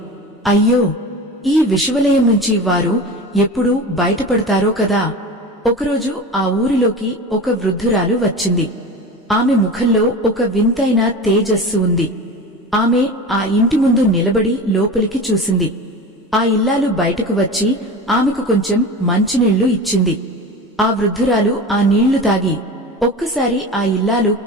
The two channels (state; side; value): normal; both; correlation 0.31